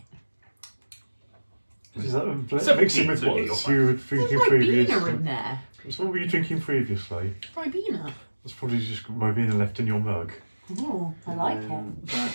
it. Is that Seven mixing beans, with what you'll you find. were There's drinking my previously? beaner in there. So what were you drinking previously? Ribena. That's probably just my beaner left in your mug. Oh, I like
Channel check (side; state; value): both; inverted; correlation -1.00